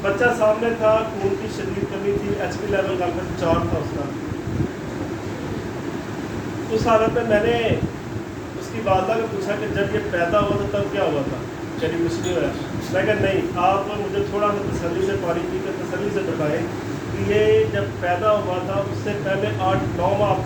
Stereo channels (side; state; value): both; identical; correlation 1.00